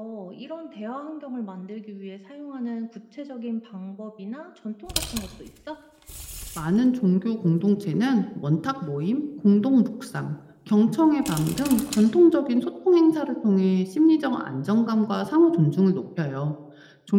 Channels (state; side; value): identical; both; correlation 1.00